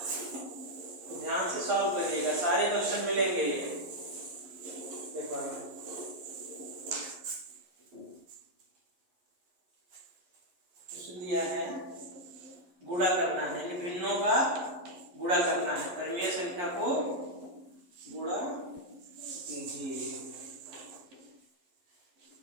तो ध्यान से सॉल्व करिएगा, सारे क्वेश्चन मिलेंगे ये पेपर में। दिया है गुणा करना है, यानी भिन्नों का गुणा करना है, परिमेय संख्या को गुणा कीजिए,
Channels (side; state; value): left; late; 11 ms